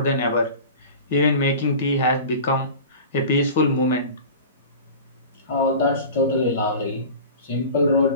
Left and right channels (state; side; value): inverted; both; correlation -0.36